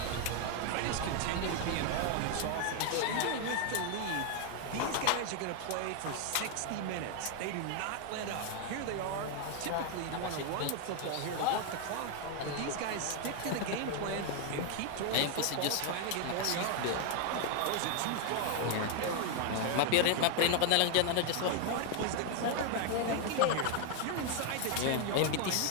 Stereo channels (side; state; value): both; different; correlation 0.00